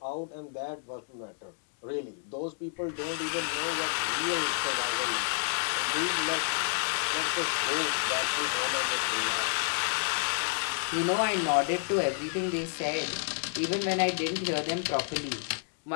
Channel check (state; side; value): silent; right; digital silence